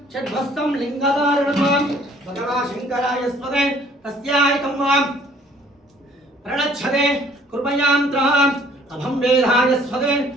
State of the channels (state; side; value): normal; both; correlation 0.58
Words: चिद्भस्तं लिङ्गधारणं भगवाशङ्कराय स्वदे तस्यायकं प्रणच्छते कृपयां त्रः अभं वेदाय स्वदे